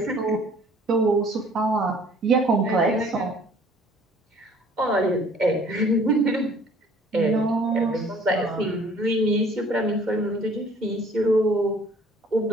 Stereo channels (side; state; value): both; normal; correlation 0.54